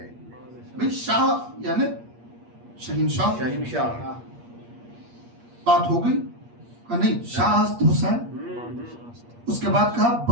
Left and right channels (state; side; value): late; left; 8.5 ms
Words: بھئی شاہ یعنی شہنشاہ شہنشاہ بات ہو گئی کہا نہیں شاہ است حسین اس کے بعد کہا